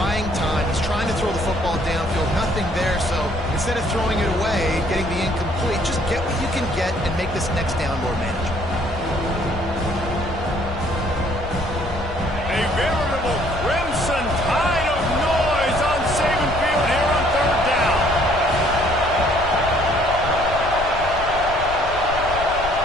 time. He's trying to throw the football downfield, nothing there. So instead of throwing it away, getting the incomplete, just get what you can get and make this next down more manageable. A veritable crimson tide of noise on Saban Field here on third down.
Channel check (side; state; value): left; noise; rumble, 9 dB below the sound